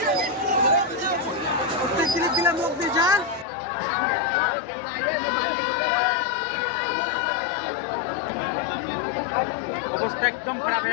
ক্লিপ দিলাম লোক দিয়ে যান অবস্থা একদম খারাপ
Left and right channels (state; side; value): drops out; right; at 3.5 s